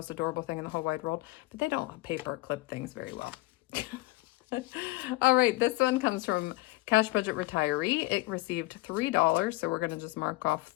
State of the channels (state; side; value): quieter; right; 20.1 dB